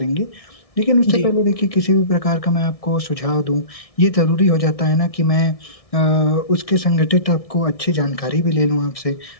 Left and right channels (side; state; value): right; late; 1.6 ms